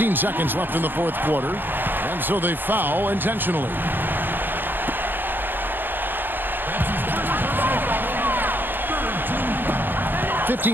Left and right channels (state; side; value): late; left; 0.095 ms